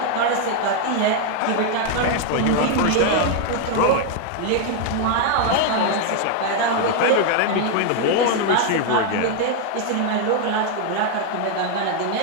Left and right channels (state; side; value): different; both; correlation 0.00